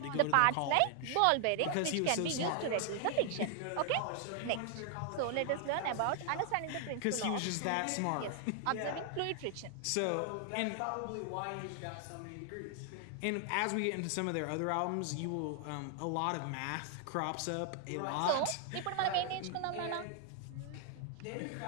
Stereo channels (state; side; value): different; both; correlation 0.00